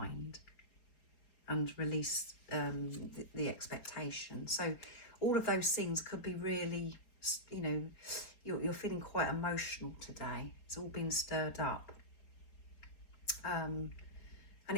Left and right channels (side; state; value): right; late; 4.8 ms